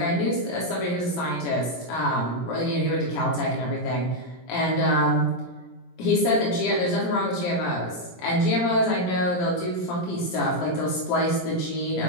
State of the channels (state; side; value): late; right; 17 ms